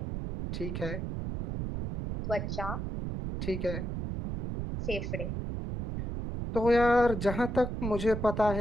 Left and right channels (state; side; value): noise; right; rumble, 4 dB below the sound